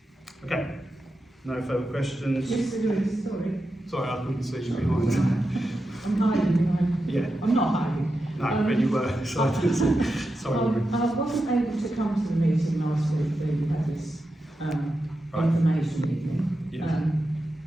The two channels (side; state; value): both; normal; correlation 0.89